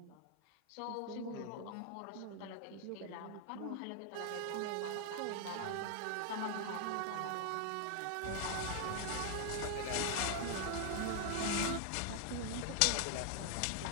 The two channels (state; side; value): different; both; correlation 0.00